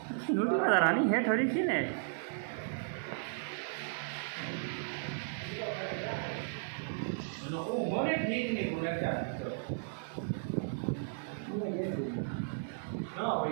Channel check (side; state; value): left; silent; digital silence